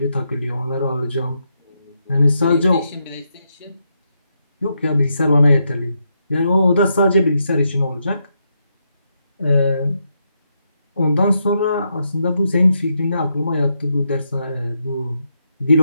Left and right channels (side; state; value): both; inverted; correlation -0.81